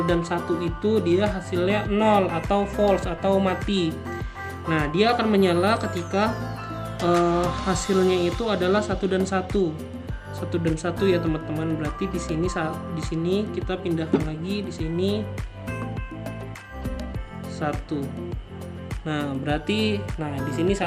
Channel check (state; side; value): identical; both; correlation 1.00